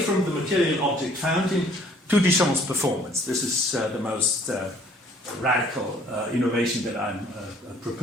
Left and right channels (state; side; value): normal; both; correlation 0.58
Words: the material object fountain to Duchamp's performance. This is the most radical innovation that I'm